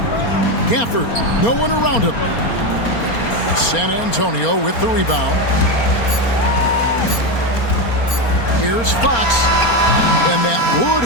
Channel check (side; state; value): right; late; 4.3 ms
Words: Gafford, no one around him. San Antonio with the rebound. Here's Fox. And that